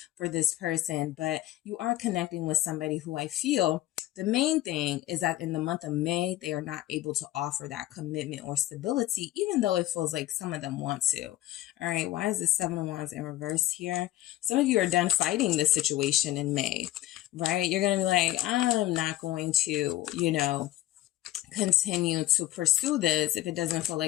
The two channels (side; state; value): right; quieter; 15.2 dB